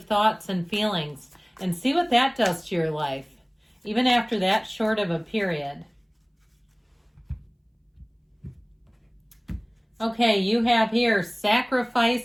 thoughts and feelings and see what that does to your life, even after that short of a period. Okay, you have here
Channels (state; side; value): identical; both; correlation 1.00